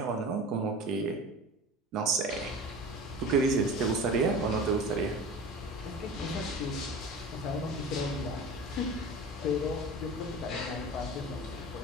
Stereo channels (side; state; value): both; normal; correlation 0.35